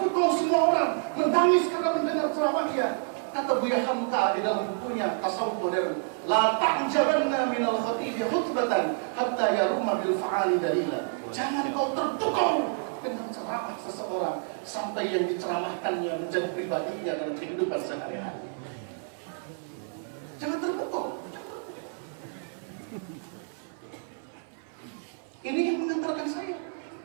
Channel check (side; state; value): left; silent; 56 dB below the other